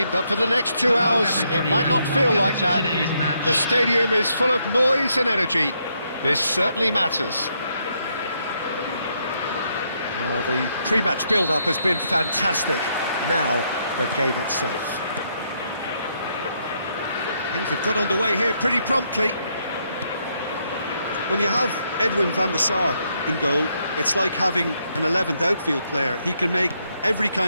but for the next 2 hours, it might not feel like that. The stadium is full of noise and energy. This certainly matters. Well, the pre-match build-up has been fantastic. Now, the game itself. Things have got underway here pretty promptly. When you have Edwin van der Sar in goal, it's like having an 11th outfield player. He can make every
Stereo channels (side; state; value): both; inverted; correlation -0.76